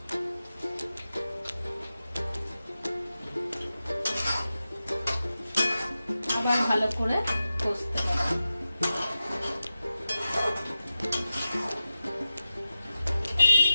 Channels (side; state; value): both; inverted; correlation -0.93